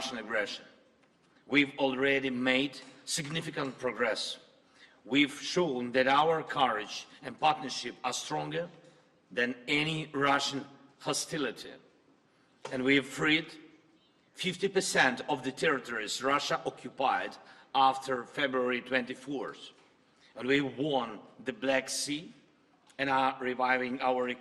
aggression. We've already made significant progress. We've shown that our courage and partnership are stronger than any Russian hostility. And we've freed 50% of the territories Russia occupied after February 24th. And we won the Black Sea and are reviving our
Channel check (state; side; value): identical; both; correlation 1.00